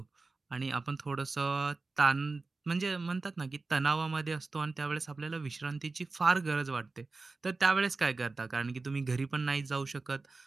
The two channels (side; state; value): left; quieter; 3.7 dB